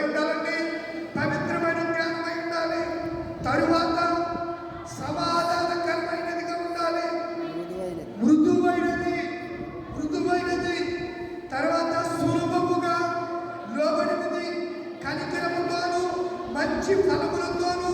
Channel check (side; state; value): both; identical; correlation 1.00